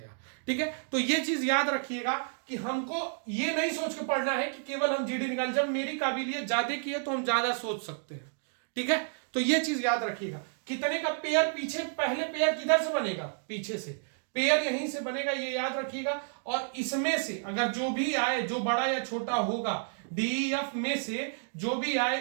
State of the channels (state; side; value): silent; left; digital silence